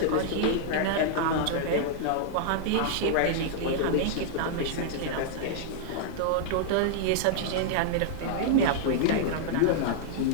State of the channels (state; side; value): different; both; correlation -0.01